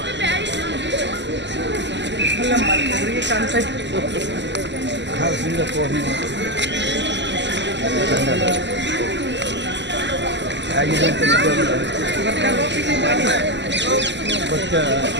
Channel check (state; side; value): late; left; 0.52 ms